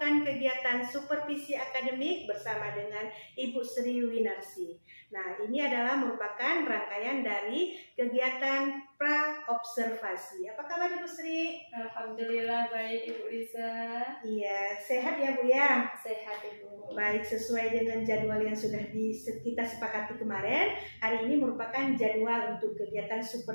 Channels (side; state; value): both; inverted; correlation -1.00